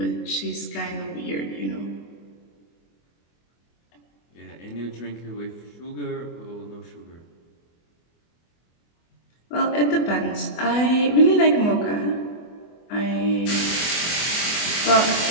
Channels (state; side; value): late; right; 24 ms